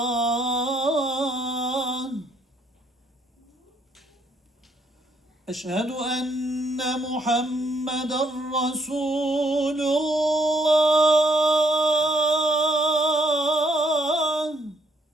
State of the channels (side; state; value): both; normal; correlation 0.69